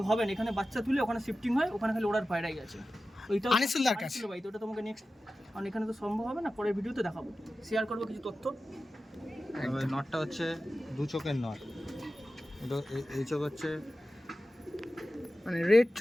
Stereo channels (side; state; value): both; normal; correlation 0.94